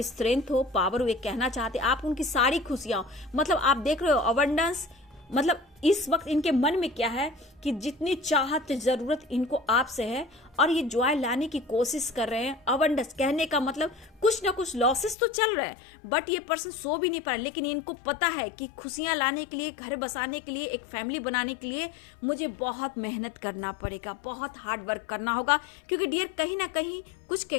स्ट्रेंथ हो, पावर हो, ये कहना चाहते हैं, आप उनकी सारी खुशियां हो। मतलब आप देख रहे हो अबंडेंस, मतलब इस वक्त इनके मन में क्या है कि जितनी चाहत, जरूरत इनको आपसे है और ये जॉय लाने की कोशिश कर रहे हैं। अबंडेंस कहने का मतलब कुछ ना कुछ लॉसेस तो चल रहे हैं, बट ये पर्सन सो भी नहीं पा रहा। लेकिन इनको पता है कि खुशियां लाने के लिए, घर बसाने के लिए, एक फैमिली बनाने के लिए मुझे बहुत मेहनत करना पड़ेगा, बहुत हार्ड वर्क करना होगा। क्योंकि डियर कहीं ना कहीं कुछ के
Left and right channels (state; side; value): drops out; right; at 15.2 s